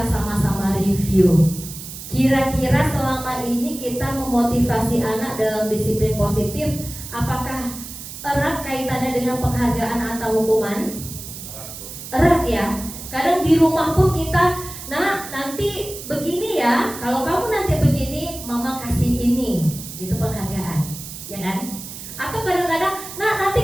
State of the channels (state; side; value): noise; right; hiss, 11 dB below the sound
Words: sama-sama review. Kira-kira selama ini kita memotivasi anak dalam disiplin positif, apakah erat kaitannya dengan penghargaan atau hukuman? Erat ya. Kadang di rumah pun kita, nah nanti begini ya, kalau kamu nanti begini, mama kasih ini, itu penghargaan, ya kan? Atau kadang-kadang, nah